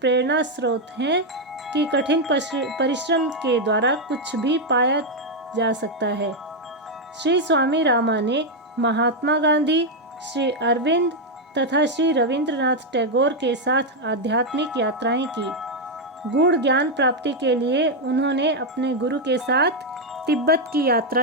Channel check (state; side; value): normal; both; correlation 0.02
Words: स्रोत हैं कि कठिन परिश्रम के द्वारा कुछ भी पाया जा सकता है। श्री स्वामी रामा ने महात्मा गांधी, श्री अरविंद तथा श्री रविंद्रनाथ टैगोर के साथ आध्यात्मिक यात्राएं की। गूढ़ ज्ञान प्राप्ति के लिए उन्होंने अपने गुरु के साथ तिब्बत की